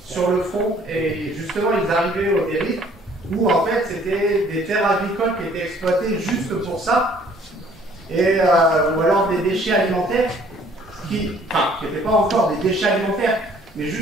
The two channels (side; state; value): both; normal; correlation 0.58